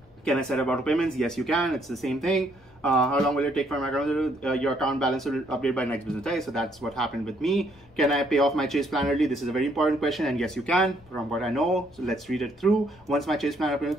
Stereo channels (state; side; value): noise; left; rumble, 28 dB below the sound